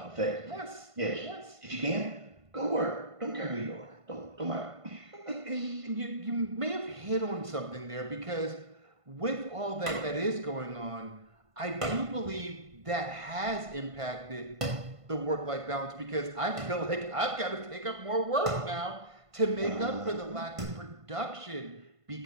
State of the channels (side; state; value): left; late; 1.5 ms